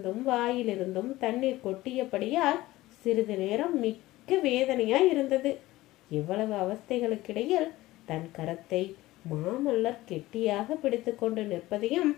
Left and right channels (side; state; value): right; quieter; 17.6 dB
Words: வாயிலிருந்தும் தண்ணீர் கொட்டியபடியால் சிறிது நேரம் மிக்க வேதனையாய் இருந்தது. இவ்வளவு அவஸ்தைகளுக்கிடையில் தன் கரத்தை மாமல்லர் கெட்டியாக பிடித்து கொண்டு நிற்பதையும்